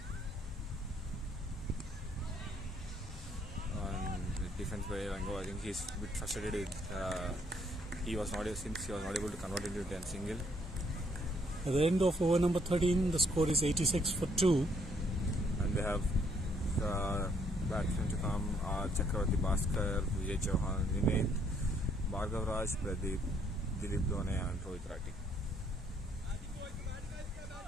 Defense by Rango, I think he's a bit frustrated with since he was not able to convert into a single. At the end of over number 13, the score is 86 for 2. And they have batsmen to come: Chakravarti Bhaskar, Vijay Chauhan, Nimit, Bhargav Raj, Pradeep, Dilip Dhone, and Rohit Rathi.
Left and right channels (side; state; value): both; normal; correlation 0.68